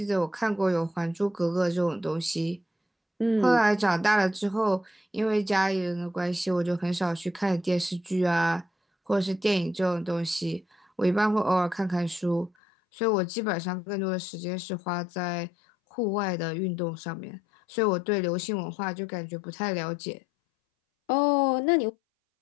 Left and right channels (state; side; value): drops out; right; at 12.5 s